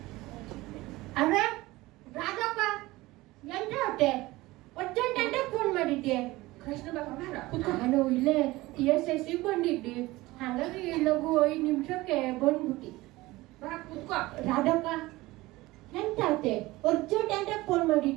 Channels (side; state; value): left; quieter; 19.5 dB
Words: ಅರೆ ರಾಘಪ್ಪ ಎಂತ ಹೊಟ್ಟೆ ಅರ್ಜೆಂಟ್ ಅಂತ ಫೋನ್ ಮಾಡಿದ್ದೆ. ಕೃಷ್ಣ ಬಾಬಾ ಬಾರ ಕುತ್ಕೋ. ನಾನು ಇಲ್ಲೇ TSS ಬಂದಿದ್ದೆ, ಹಾಗಾಗಿ ಲಘು 5 ನಿಮಿಷಕ್ಕೆ ಬಂದ್ಬಿಟ್ಟಿ. ಬಾ ಕುತ್ಕೋ. ರಾಧಕ್ಕ ಎಂತ ಆತೆ ಅರ್ಜೆಂಟ್ ಅಂತ ಫೋನ್